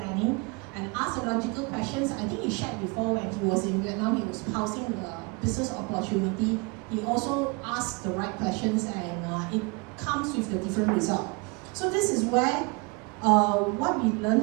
and ask the logical questions. I think he shared before when he was in Vietnam, he was pausing the business opportunity. He also asked the right questions, and it comes with the different result. So this is where what we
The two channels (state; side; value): quieter; left; 29.3 dB